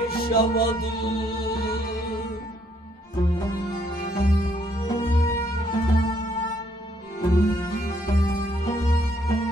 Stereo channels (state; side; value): normal; both; correlation 0.69